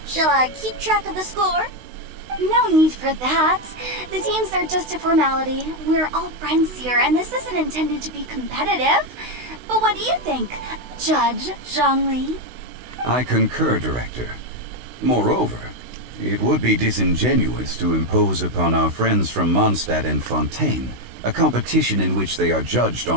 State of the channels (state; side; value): late; left; 16 ms